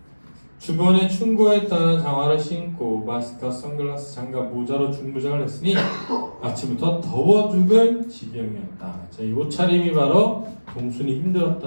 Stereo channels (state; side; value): inverted; both; correlation -1.00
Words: 주변에 충고에 따른 장화를 신고 마스크와 선글라스, 장갑, 모자로 중부장을 했으니 아침부터 더워 죽을 지경이었다. 자, 이 옷차림이 바로 동순이